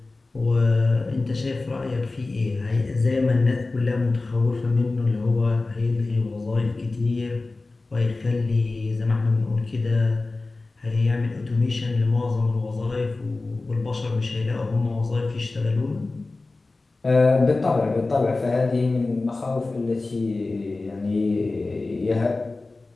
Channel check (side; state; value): right; quieter; 3.4 dB